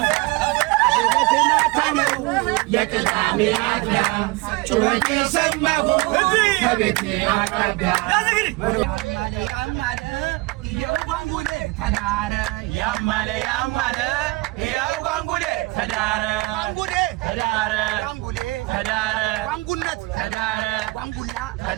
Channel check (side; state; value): left; quieter; 23.4 dB